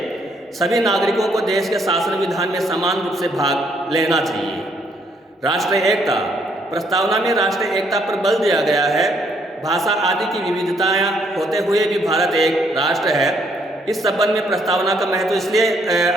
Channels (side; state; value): both; normal; correlation 0.69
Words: सभी नागरिकों को देश के शासन विधान में समान रूप से भाग लेना चाहिए। राष्ट्रीय एकता। प्रस्तावना में राष्ट्रीय एकता पर बल दिया गया है। भाषा आदि की विविधताएं होते हुए भी भारत एक राष्ट्र है। इस संबंध में प्रस्तावना का महत्व इसलिए